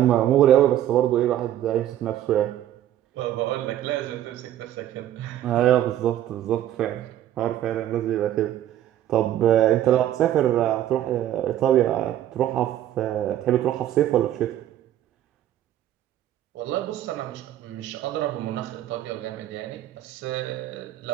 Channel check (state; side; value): quieter; left; 12.2 dB